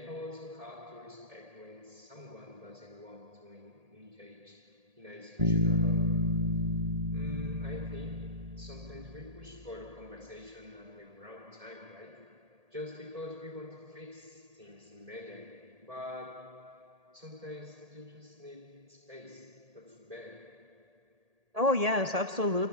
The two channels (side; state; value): left; late; 1.8 ms